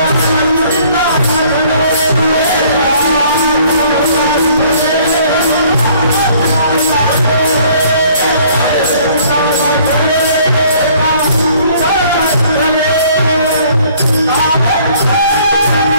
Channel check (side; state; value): both; inverted; correlation -0.58